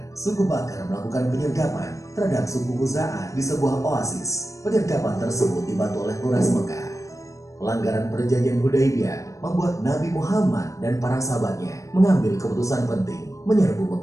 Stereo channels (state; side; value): late; right; 0.15 ms